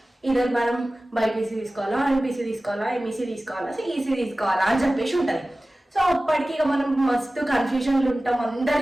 ఇద్దరు మనం బైపీసీ తీసుకోవాలా, ఎంపీసీ తీసుకోవాలా, ఎంఈసీ తీసుకోవాలా, సిఈసీ తీసుకోవాలా అని చెప్పేసి ఉంటుంది. సో అప్పటికి ఇక మనం మస్తు కన్ఫ్యూజన్లు ఉంటాం,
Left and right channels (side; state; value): both; normal; correlation 0.97